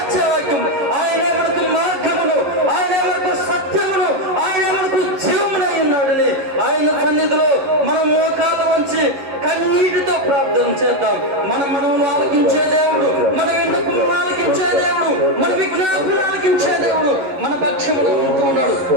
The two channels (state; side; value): late; left; 11 ms